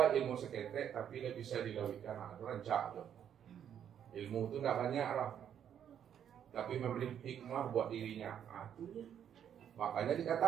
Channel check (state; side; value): quieter; left; 9.2 dB